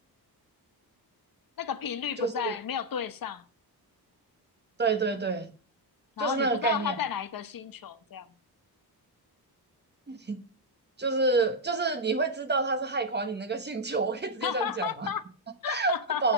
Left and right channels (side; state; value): both; normal; correlation -0.02